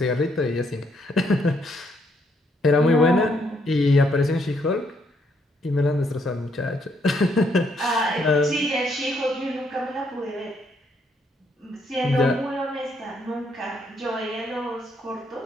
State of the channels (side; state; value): both; normal; correlation 0.72